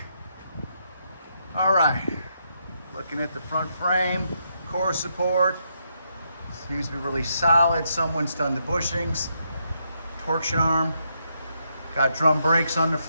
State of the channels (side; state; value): both; inverted; correlation -0.79